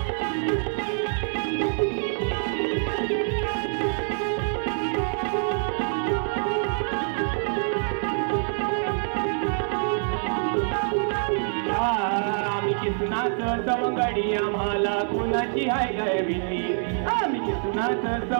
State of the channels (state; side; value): silent; left; 57 dB below the other